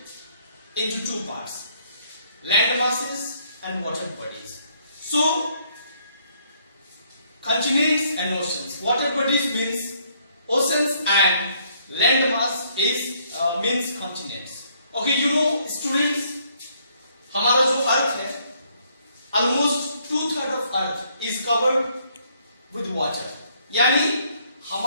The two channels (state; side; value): inverted; both; correlation -0.68